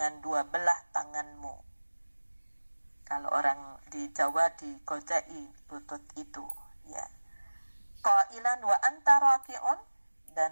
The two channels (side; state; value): both; inverted; correlation -1.00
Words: dua belah tanganmu. Kalau orang di Jawa digojai lutut itu, ya. Qailan wa anta raki'un, dan